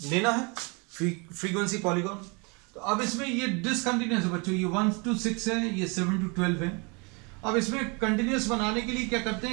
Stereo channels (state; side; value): quieter; left; 30.7 dB